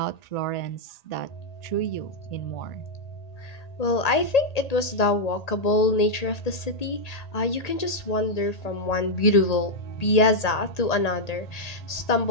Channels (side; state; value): right; late; 1.8 ms